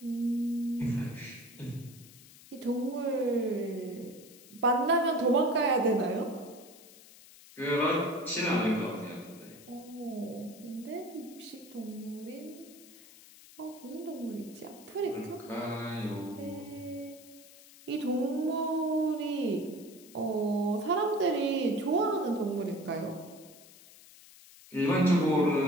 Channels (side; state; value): left; noise; hiss, 21 dB below the sound